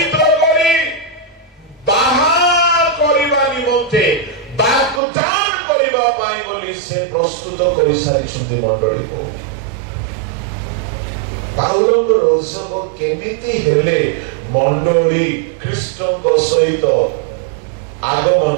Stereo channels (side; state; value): left; drops out; at 5.0 s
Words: କରି, ବାହାର କରିବା ନିମନ୍ତେ ବାଗଦାନ କରିବା ପାଇଁ ବୋଲି ସେ ପ୍ରସ୍ତୁତ କରିସାରିଛନ୍ତି ମଣ୍ଡଳୀକୁ। ପାଉଲଙ୍କର ଉତ୍ସବ କେମିତି ହେଲେ ମଣ୍ଡଳୀ ଖ୍ରୀଷ୍ଟଙ୍କ ସହିତ